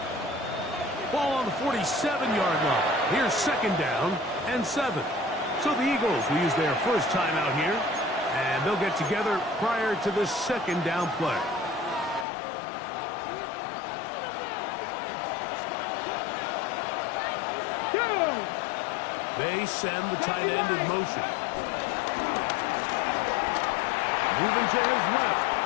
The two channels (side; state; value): right; drops out; at 12.2 s